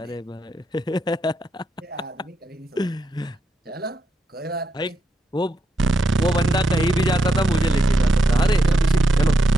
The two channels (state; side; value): normal; both; correlation 0.83